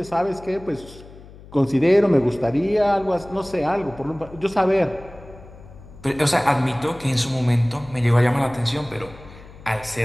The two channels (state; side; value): noise; left; hum, 19 dB below the sound